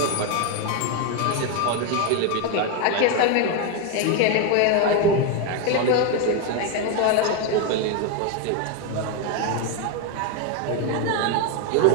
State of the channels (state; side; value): different; both; correlation 0.02